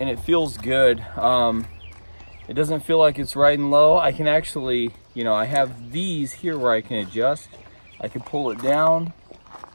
it feels good. It doesn't feel like it's riding low. I can actually, you know, I have these here where I can adjust. I could pull it down,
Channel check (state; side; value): inverted; both; correlation -1.00